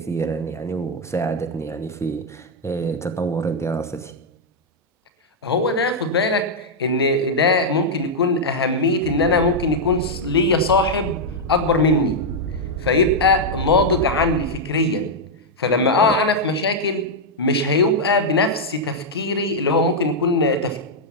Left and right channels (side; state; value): both; normal; correlation -0.03